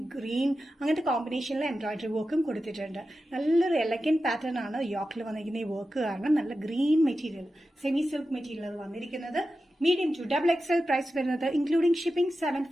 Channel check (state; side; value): normal; both; correlation 0.92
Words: ഗ്രീൻ അങ്ങനത്തെ കോമ്പിനേഷനിൽ എംബ്രോയിഡറി വർക്കും കൊടുത്തിട്ടുണ്ട്. നല്ലൊരു എലഗന്റ് പാറ്റേൺ ആണ് യോക്കിൽ വന്നിരിക്കുന്ന ഈ വർക്ക് കാരണം. നല്ല green material, semi silk material വന്നിരിക്കുന്നത്. മീഡിയം ടു XXL പ്രൈസ് വരുന്നത് ഇൻക്ലൂഡിംഗ് ഷിപ്പിംഗ്